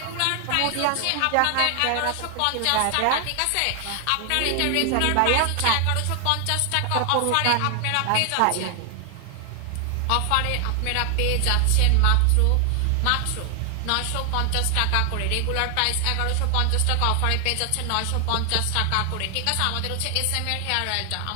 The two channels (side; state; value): both; different; correlation 0.00